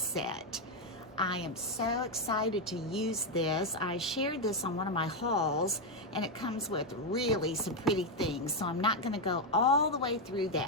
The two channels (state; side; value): normal; both; correlation 0.04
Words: I am so excited to use this. I shared this on one of my hauls, and it comes with really some pretty things, so I'm not going to go all the way through